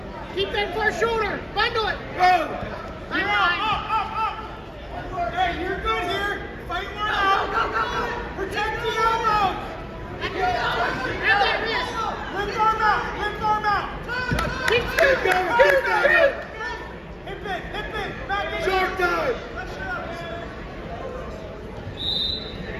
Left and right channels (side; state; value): both; identical; correlation 1.00